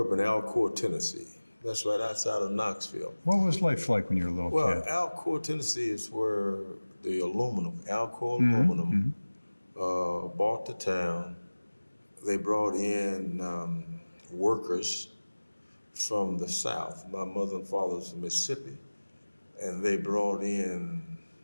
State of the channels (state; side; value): inverted; both; correlation -1.00